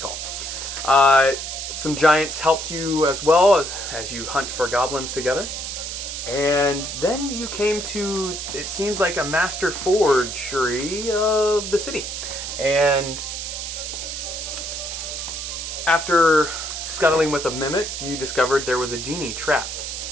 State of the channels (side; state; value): right; noise; hiss, 6 dB below the sound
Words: Some giants helped you as well as you hunt for goblins together. And then you came to, it seems like, a master forgery of the city. And after scuttling with a mimic, you discovered there was a genie trapped